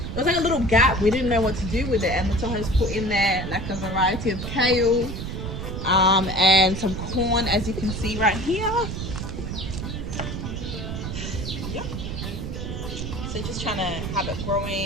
It was like a little gap. We didn't know what to do with it, and so I just put in there like a variety of kale, and some corn, as you can see right here. Yep. So just trying to have it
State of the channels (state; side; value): noise; right; rumble, 5 dB below the sound